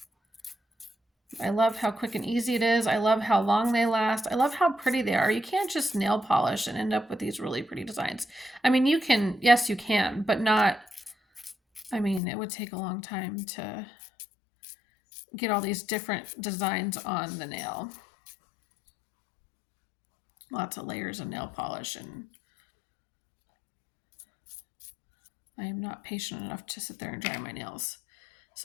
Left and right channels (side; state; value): right; drops out; at 12.2 s